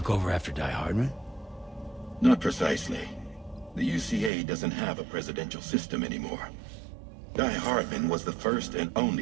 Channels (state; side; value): drops out; left; at 4.3 s